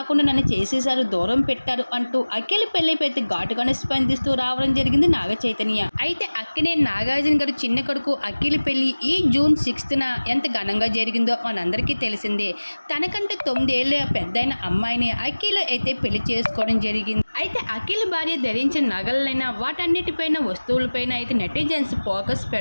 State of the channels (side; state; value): both; inverted; correlation -1.00